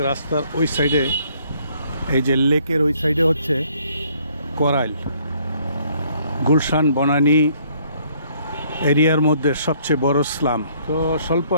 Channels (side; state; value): both; inverted; correlation -0.64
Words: রাস্তার ওই সাইডে, এই যে লেকের ওই সাইডে হচ্ছে করাইল। গুলশান বনানী এরিয়ার মধ্যে সবচেয়ে বড় স্লাম। তো স্বল্প